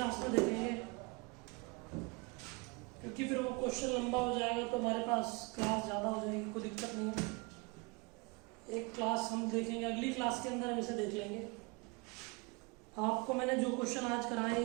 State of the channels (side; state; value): left; quieter; 28.6 dB